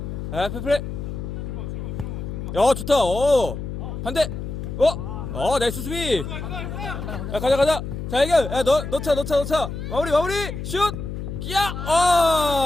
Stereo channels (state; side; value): noise; left; hum, 6 dB below the sound